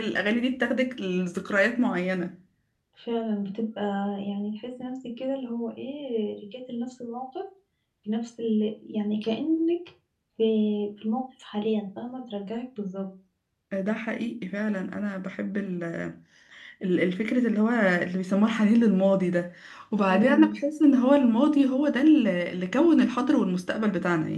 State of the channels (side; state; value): both; identical; correlation 1.00